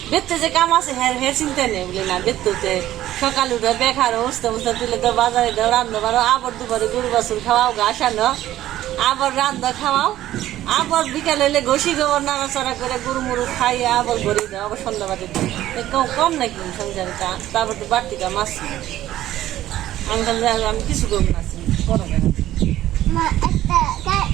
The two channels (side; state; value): left; quieter; 13.7 dB